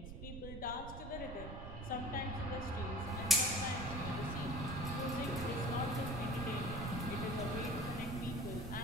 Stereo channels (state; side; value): noise; right; rumble, 8 dB below the sound